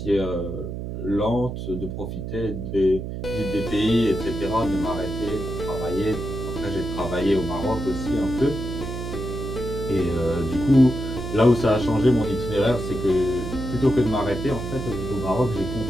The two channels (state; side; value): noise; right; hum, 6 dB below the sound